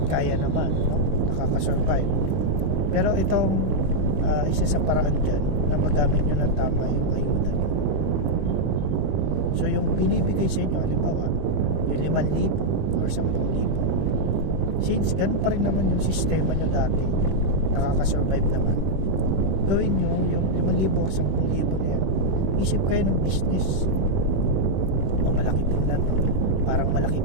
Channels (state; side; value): late; left; 21 ms